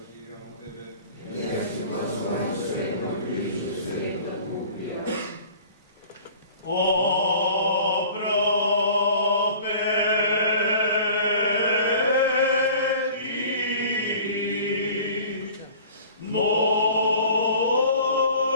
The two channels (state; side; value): inverted; both; correlation -0.45